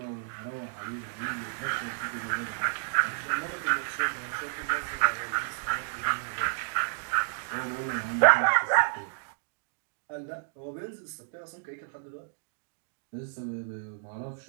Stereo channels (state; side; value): silent; left; digital silence